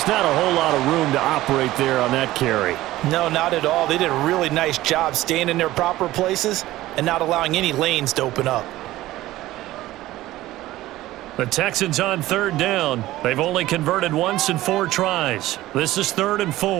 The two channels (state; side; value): quieter; left; 16.2 dB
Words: not a whole lot of room to operate there on that carry. No, not at all. They did a really nice job staying in their proper places and not allowing any lanes to open up. The Texans on 3rd down. They've only converted once in 4 tries. This is 3rd and